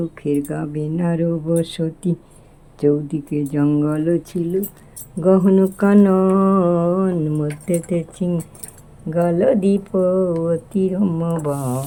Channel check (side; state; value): both; identical; correlation 1.00